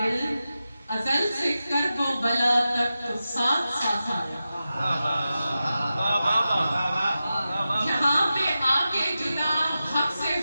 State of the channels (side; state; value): both; inverted; correlation -0.92